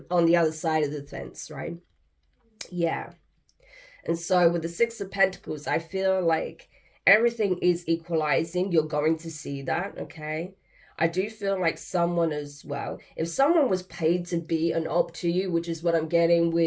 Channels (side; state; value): both; identical; correlation 1.00